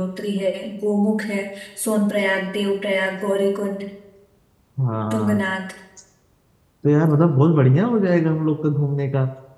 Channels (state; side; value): identical; both; correlation 1.00